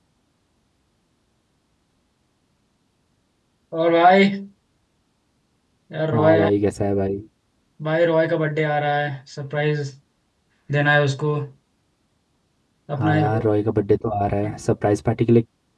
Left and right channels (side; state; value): both; identical; correlation 1.00